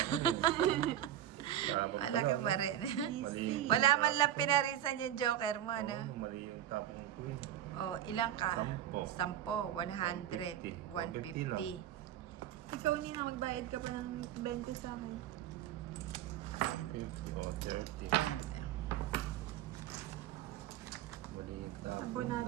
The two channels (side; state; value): left; quieter; 11.5 dB